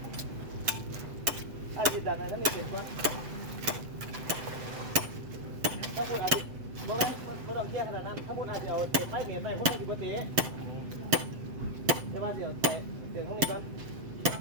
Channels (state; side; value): late; left; 7.6 ms